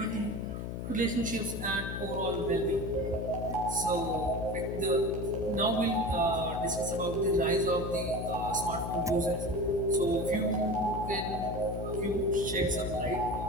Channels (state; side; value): noise; left; hum, 5 dB below the sound